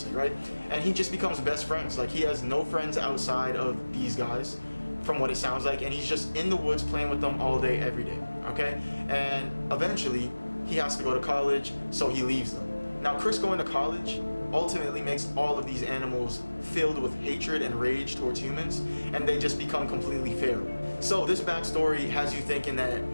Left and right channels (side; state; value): both; inverted; correlation -1.00